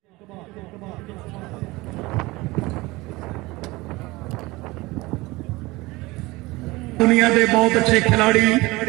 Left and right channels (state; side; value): quieter; left; 21.6 dB